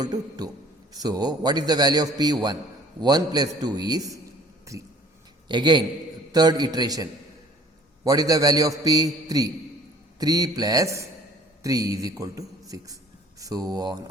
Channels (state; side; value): normal; both; correlation 0.54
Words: to 2. So, what is the value of P? 1. 1 plus 2 is 3. Again, third iteration. What is the value of P? 3. 3 plus 3 is equal to 6. So on